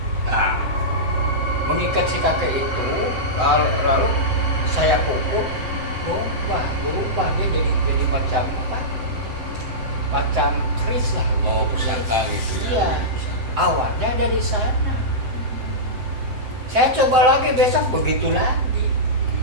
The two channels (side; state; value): left; late; 7.8 ms